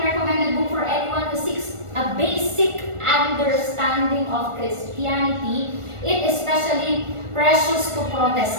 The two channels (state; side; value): late; left; 1.4 ms